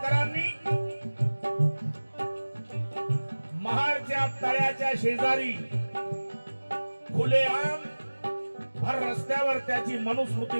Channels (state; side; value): inverted; both; correlation -1.00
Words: महाडच्या तळ्याच्या शेजारी खुलेआम भर रस्त्यावर त्याची मनुस्मृती